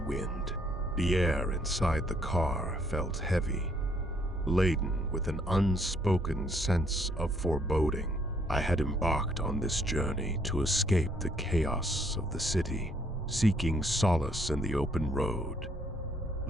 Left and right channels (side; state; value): both; normal; correlation 0.67